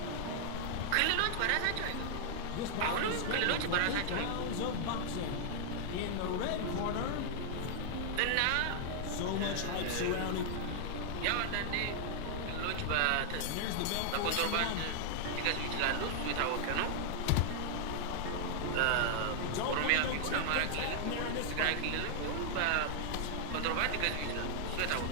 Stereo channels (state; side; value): different; both; correlation 0.00